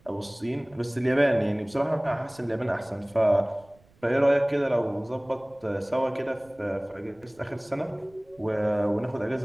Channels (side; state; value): right; noise; rumble, 30 dB below the sound